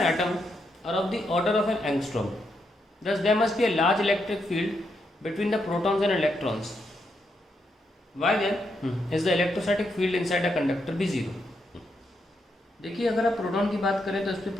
atom are of the order of an angstrom. Thus, there must be a large electric field between the protons and electrons. Why then is the electrostatic field inside a conductor be zero? देखिए, अगर आप proton की बात करें तो इस पर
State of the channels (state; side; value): normal; both; correlation 0.81